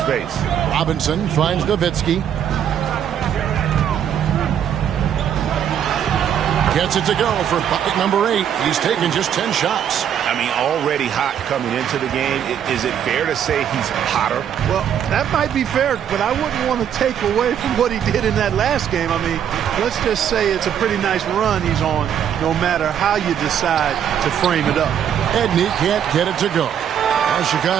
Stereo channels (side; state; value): left; quieter; 9.2 dB